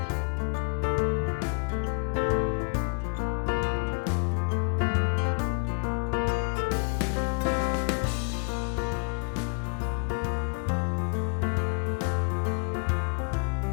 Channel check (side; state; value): right; quieter; 37.5 dB